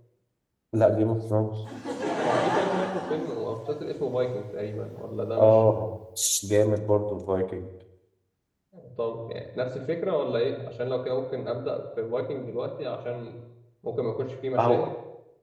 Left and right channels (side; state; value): both; identical; correlation 1.00